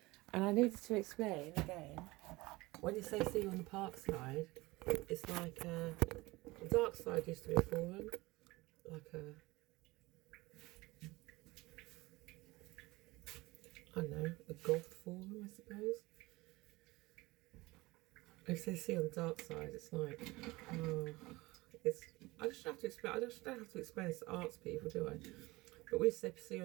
and I needed to explain again. When you say see you on the park side, it's like the dark side used to be a forum, like a, I don't know, a goth forum, I suppose. If they see on the dark side, it's like, oh, I just have to explain. I just don't have to explain this to arts people, do I? But we say see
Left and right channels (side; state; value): left; quieter; 21.3 dB